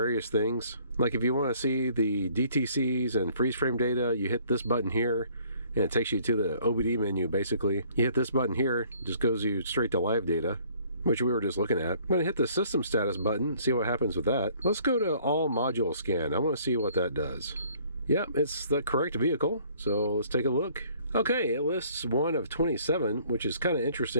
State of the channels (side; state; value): both; inverted; correlation -0.59